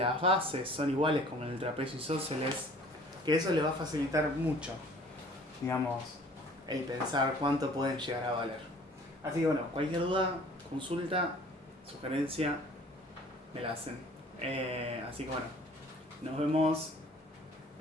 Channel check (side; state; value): both; normal; correlation 0.51